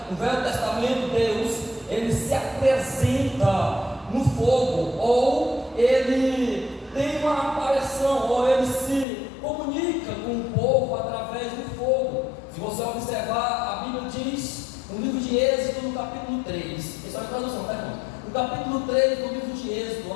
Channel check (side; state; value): right; drops out; at 9.1 s